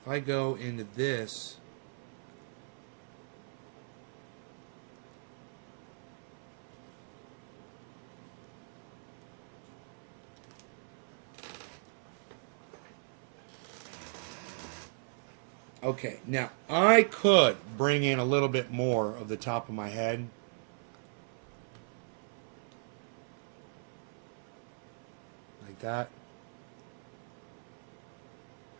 If I go into this... Okay, now I could bring in a little bit more of the top of my head. Like that.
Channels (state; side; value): silent; left; 53 dB below the other